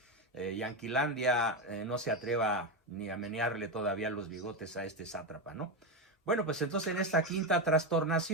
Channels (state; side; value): normal; both; correlation 0.12